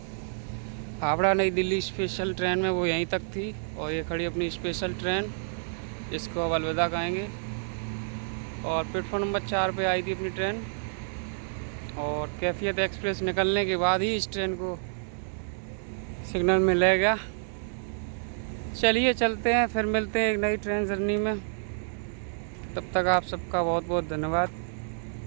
हावड़ा नई दिल्ली स्पेशल ट्रेन में, वो यहीं तक थी। और ये खड़ी अपनी स्पेशल ट्रेन, जिसको अब अलविदा कहेंगे। और प्लेटफॉर्म नंबर 4 पे आई थी अपनी ट्रेन। और कैफियत एक्सप्रेस निकलने के बाद ही इस ट्रेन को सिग्नल मिलेगा। चलिए चलते हैं, फिर मिलते हैं एक नई ट्रेन जर्नी में। तब तक आप सबका बहुत बहुत धन्यवाद।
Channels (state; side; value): silent; left; digital silence